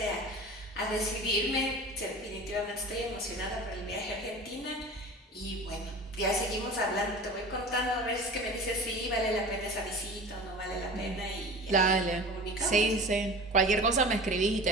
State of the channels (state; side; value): normal; both; correlation 0.37